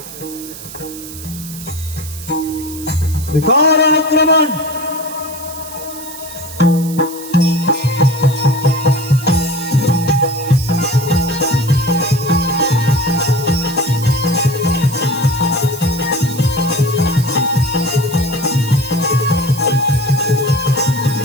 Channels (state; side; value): noise; right; hiss, 13 dB below the sound